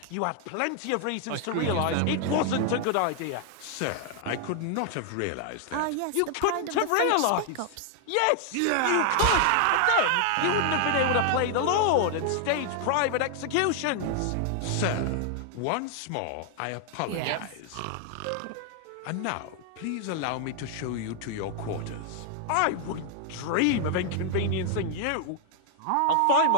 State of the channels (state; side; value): different; both; correlation 0.00